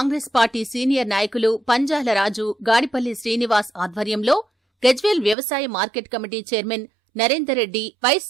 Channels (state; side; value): drops out; left; at 5.4 s